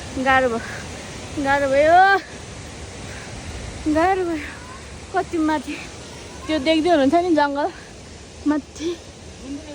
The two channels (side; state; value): both; identical; correlation 1.00